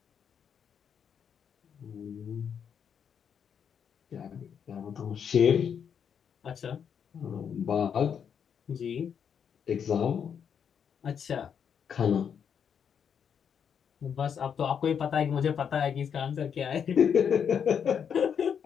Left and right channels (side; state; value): right; quieter; 7.6 dB